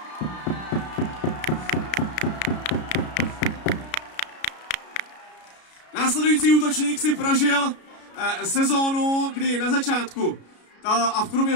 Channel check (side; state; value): right; late; 33 ms